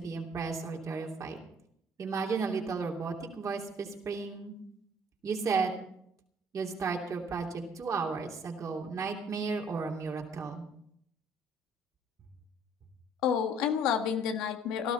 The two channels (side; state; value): both; normal; correlation 0.57